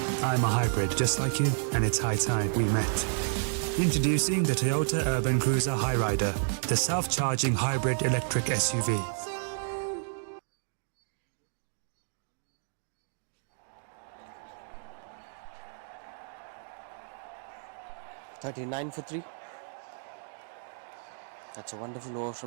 I'm a hybrid just like you, and it's high time we met. Introducing the Toyota Urban Cruiser Hyrider, the self-charging hybrid electric SUV. $39 for 3. That's a wonderful over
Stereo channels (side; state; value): left; silent; digital silence